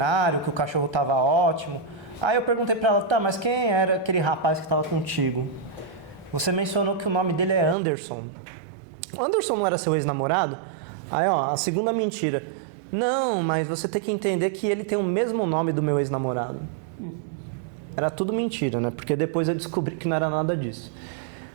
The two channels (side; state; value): left; drops out; at 7.8 s